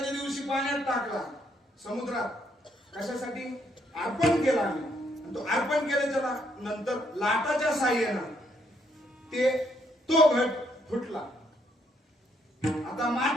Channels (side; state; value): both; normal; correlation 0.72